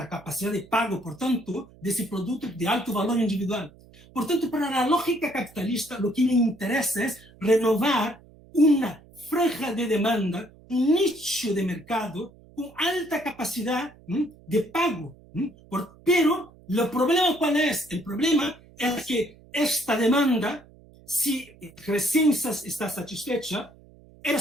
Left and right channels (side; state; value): right; noise; hum, 25 dB below the sound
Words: capacidad de pago, por tanto, de ese producto de alto valor individual. Por tanto, para la lógica capitalista, lo que le interesa es renovar una franja de demanda, un nicho de mercado con alta capacidad de pago. Pero, ¿el problema cuál es? El problema es que esta demanda, si recién está satisfecha,